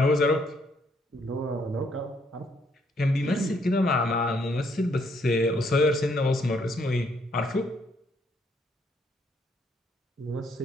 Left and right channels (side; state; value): both; normal; correlation 0.70